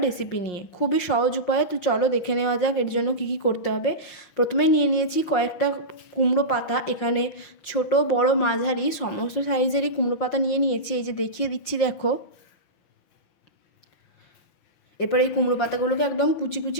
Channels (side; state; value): right; late; 5.6 ms